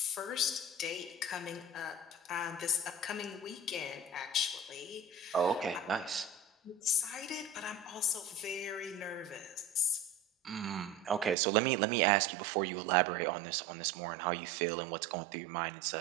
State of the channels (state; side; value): drops out; left; at 11.4 s